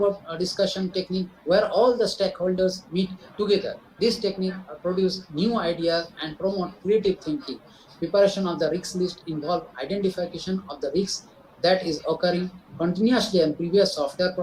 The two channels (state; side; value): identical; both; correlation 1.00